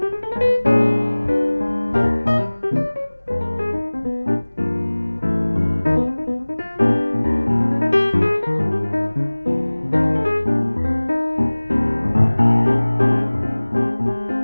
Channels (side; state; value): both; inverted; correlation -1.00